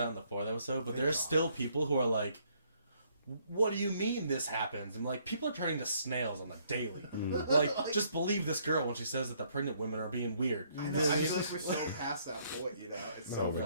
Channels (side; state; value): both; inverted; correlation -0.68